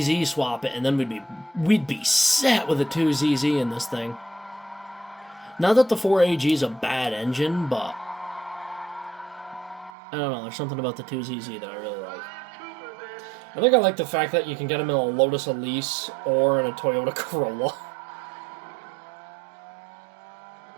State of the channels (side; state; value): left; drops out; at 9.9 s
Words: swap it, and then we'd be set with a 2ZZ in this thing. Not that the 4AG is a bad engine, but I don't know. There's something about the 2ZZ that I really like. I think I like the fact that you can get them in a Lotus Elise or in a Toyota Corolla.